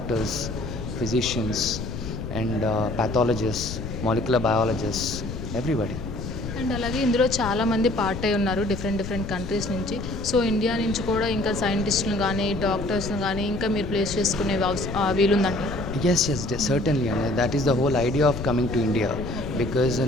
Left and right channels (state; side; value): noise; left; rumble, 7 dB below the sound